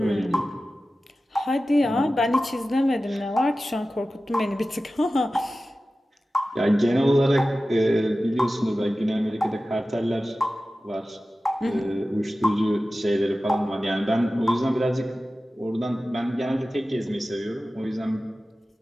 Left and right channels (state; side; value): normal; both; correlation 0.95